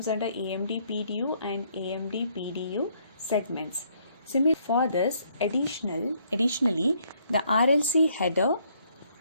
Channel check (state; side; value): inverted; both; correlation -0.68